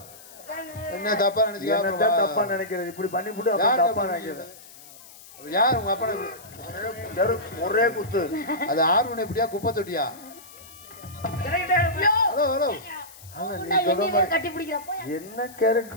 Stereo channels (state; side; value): noise; left; hiss, 20 dB below the sound